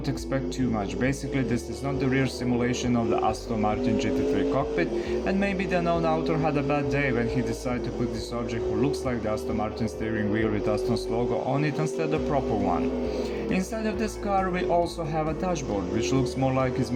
expect too much, basically this is not the real simulation of the Aston Martin GT3 cockpit, and maybe the unknown author had a bad day when he decided to put this object who looks like the Aston Martin steering wheel with Aston's logo on it instead of the proper one. Inside of this car we also have a dashboard which looks more like it's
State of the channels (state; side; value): identical; both; correlation 1.00